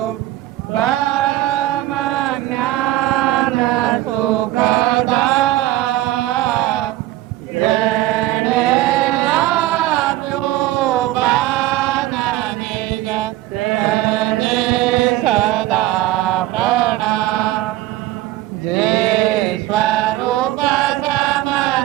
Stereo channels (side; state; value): left; quieter; 15.6 dB